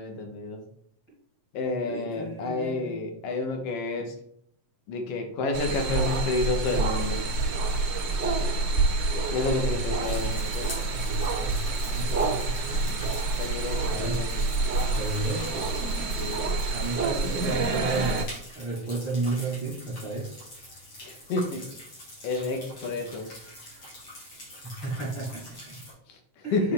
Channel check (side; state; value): right; late; 7.7 ms